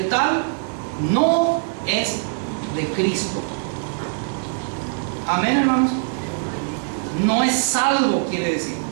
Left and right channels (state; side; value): silent; left; digital silence